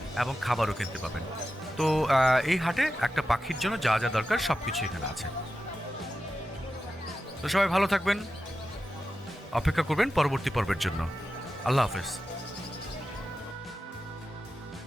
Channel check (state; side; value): normal; both; correlation 0.91